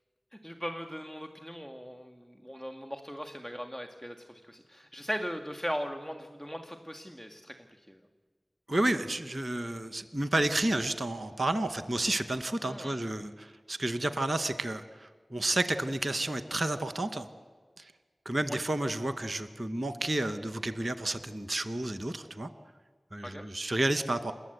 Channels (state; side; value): normal; both; correlation 0.96